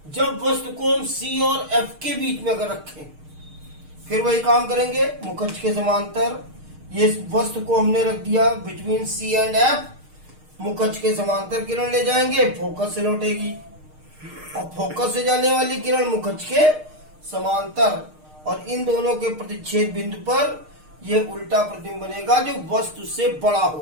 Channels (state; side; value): late; left; 6.5 ms